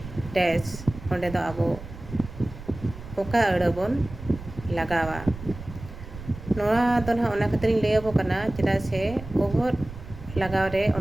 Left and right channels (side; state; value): right; noise; rumble, 13 dB below the sound